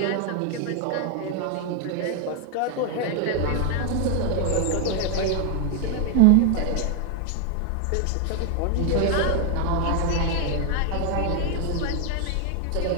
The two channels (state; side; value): different; both; correlation 0.00